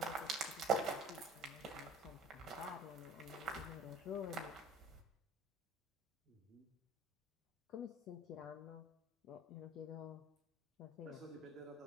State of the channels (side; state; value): both; normal; correlation 0.46